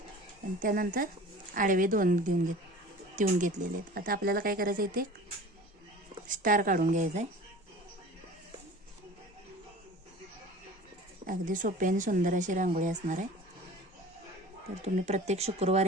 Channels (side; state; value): both; normal; correlation 0.41